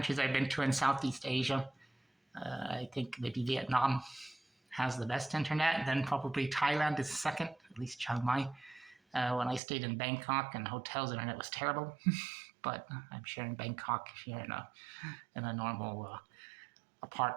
I've been to in Southeast Asia, I think maybe Vietnam has the best internet. Then probably Thailand is second, at least Chiang Mai. When I stayed in Bangkok and hotels, internet was terrible. But I'm sure in Bangkok, if you're in a normal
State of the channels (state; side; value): drops out; left; at 9.6 s